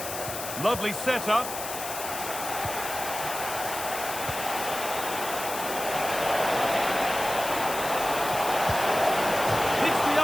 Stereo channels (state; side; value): noise; left; hiss, 7 dB below the sound